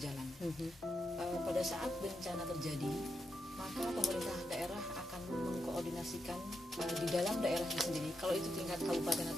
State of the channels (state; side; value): normal; both; correlation 0.84